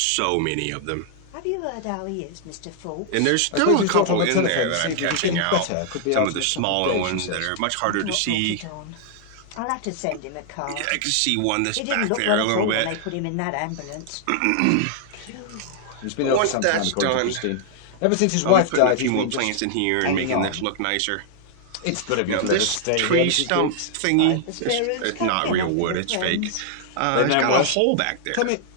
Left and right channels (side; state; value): both; different; correlation 0.00